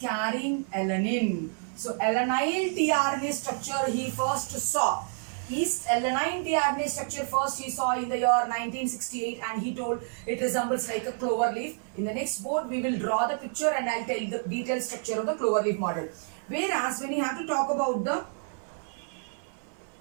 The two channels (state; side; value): silent; left; 59 dB below the other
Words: carrying alanine. So alanine tRNA structure he first saw. Yeast alanine tRNA structure first he saw in the year 1968, and he told it resembles like a clover leaf. In the next board we will draw the picture and I'll tell the detailed structure of the clover leaf model. Whereas when you have to talk about the